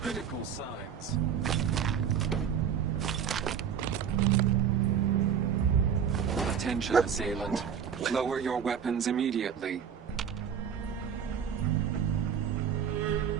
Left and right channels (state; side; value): quieter; left; 7.9 dB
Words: signs. Attention, assailant. Lower your weapons immediately.